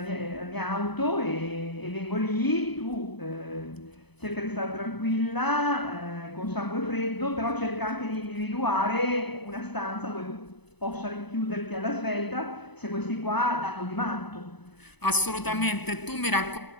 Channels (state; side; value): late; right; 0.99 ms